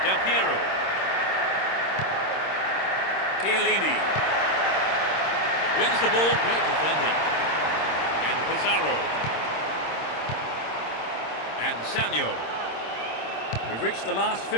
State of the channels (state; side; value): late; right; 26 ms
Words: Del Piero. Chiellini. Wins the ball, great defending. And Pizarro. And Samuel. We've reached the last